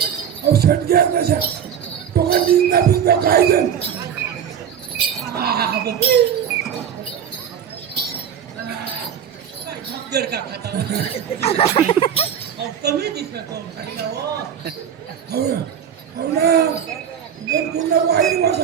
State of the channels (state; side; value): quieter; left; 8.6 dB